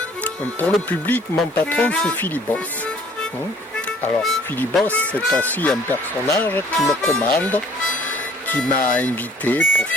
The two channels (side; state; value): both; normal; correlation 0.55